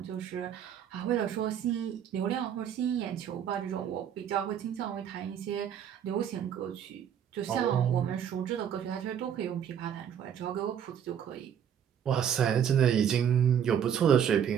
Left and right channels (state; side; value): quieter; left; 8.8 dB